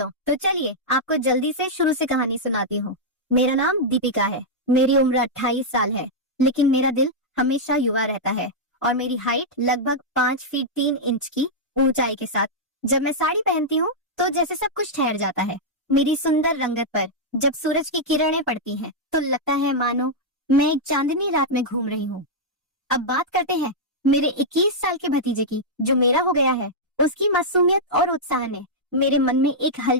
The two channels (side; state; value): both; normal; correlation -0.06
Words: तो चलिए आपको जल्दी से शुरू से कहानी सुनाती हूँ। मेरा नाम दीपिका है, मेरी उम्र 28 साल है, लेकिन मेरा दिल हमेशा युवा रहता है और मेरी हाइट लगभग 5 फीट 3 इंच की ऊंचाई के साथ जब मैं साड़ी पहनती हूँ तो जैसे सब कुछ ठहर जाता है। मेरी सुंदर रंगत पर जब सूरज की किरणें पड़ती हैं तो लगता है मानो मैं एक चांदनी रात में घूम रही हूँ। अब बात करते हैं मेरे 21 साल के भतीजे की, जो मेरा हो गया है। उसकी मासूमियत और उत्साह ने मेरे मन में एक